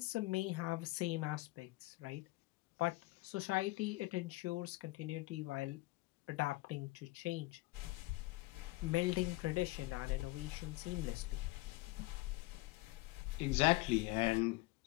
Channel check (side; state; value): right; quieter; 20.7 dB